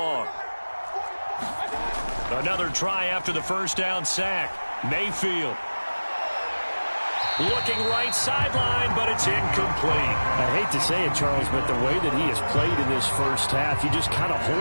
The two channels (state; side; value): inverted; both; correlation -1.00